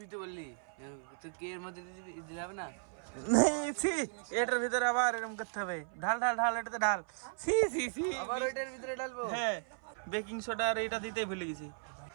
তো বললি তো কে এর মধ্যে দিতে যাবে না। এটার ভিতরে আবার এরকম করতে হবে। ঢাল ঢাল ঢাল, এটাতে ঢাল। আবার ওইটার ভিতরে ডালবো। হ্যাঁ বেকিং সোডা আর এটা দিতেই ভুলে গেছি,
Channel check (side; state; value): left; silent; 54 dB below the other